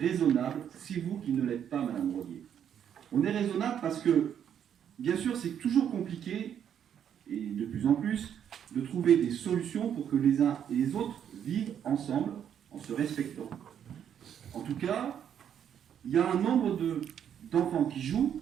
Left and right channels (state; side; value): quieter; left; 9.0 dB